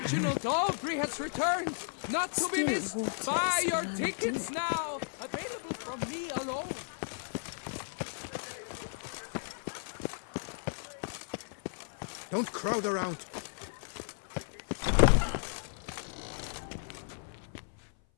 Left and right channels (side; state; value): right; silent; 55 dB below the other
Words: Aubrey has returned, not to be missed. Still Buy your waters tickets now, available from me alone. Don't crowd around.